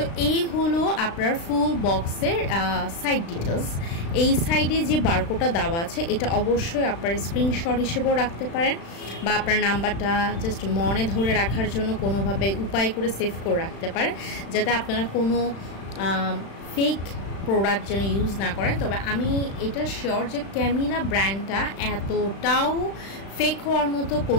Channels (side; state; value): right; late; 36 ms